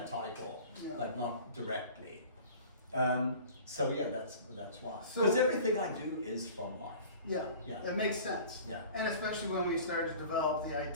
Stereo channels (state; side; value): inverted; both; correlation -0.43